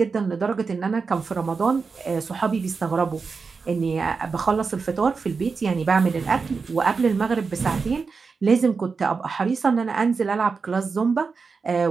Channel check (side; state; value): left; quieter; 4.9 dB